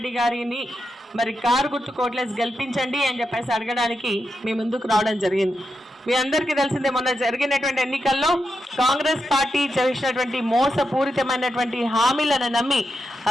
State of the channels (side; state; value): both; normal; correlation 0.86